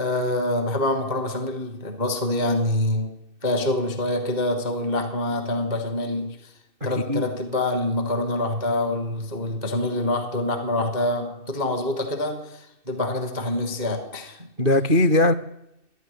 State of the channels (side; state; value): left; late; 2.6 ms